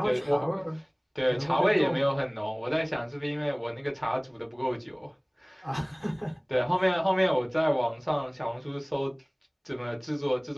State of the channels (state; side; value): identical; both; correlation 1.00